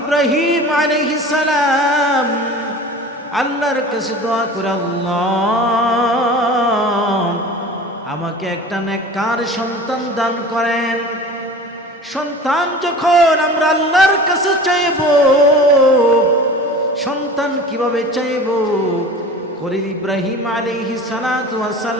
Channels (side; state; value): both; normal; correlation 0.38